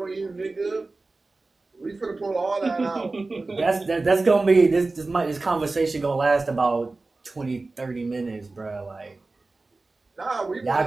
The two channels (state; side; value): quieter; left; 3.4 dB